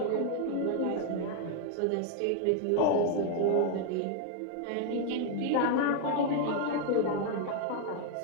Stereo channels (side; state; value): both; different; correlation 0.00